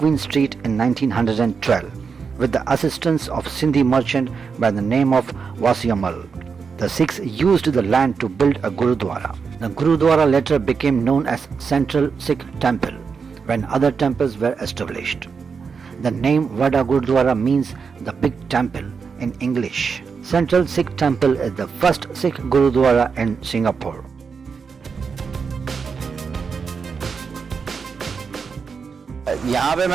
Street in 1912 with the assistance of Sindhi merchant by the name of Wasiamal. The Sikhs used the land to build a Gurudwara. The Gurudwara later became known as Central Sikh Temple when other temples were established. The name Vada Gurudwara means the big temple in English. Central Sikh Temple is the first Sikh Gurudwara in Singapore. यहाँ पे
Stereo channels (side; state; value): left; quieter; 5.6 dB